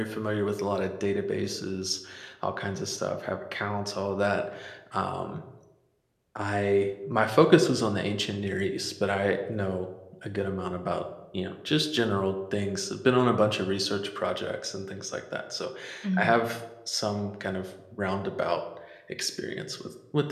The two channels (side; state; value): both; identical; correlation 1.00